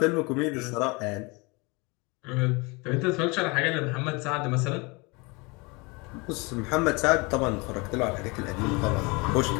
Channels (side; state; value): right; quieter; 27.3 dB